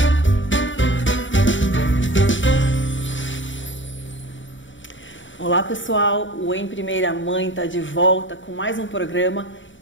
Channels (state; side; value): late; right; 0.55 ms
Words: Olá pessoal, o Em Primeira Mãe está de volta com mais um programa